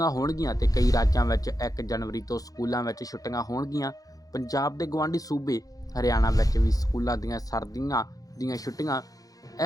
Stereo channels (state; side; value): late; right; 0.17 ms